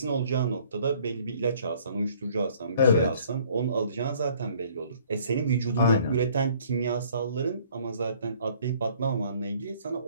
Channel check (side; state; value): both; inverted; correlation -0.57